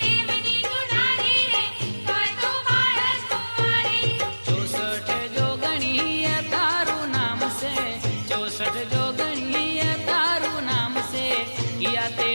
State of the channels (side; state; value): both; inverted; correlation -1.00